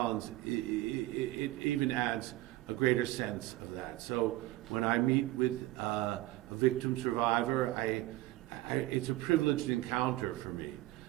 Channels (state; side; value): quieter; left; 17.3 dB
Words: it even adds a greater sense of that. So when I meet with a victim survivor, it's a privileged encounter for me,